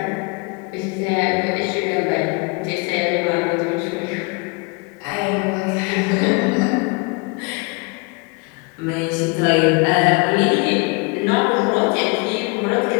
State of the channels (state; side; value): quieter; right; 29.6 dB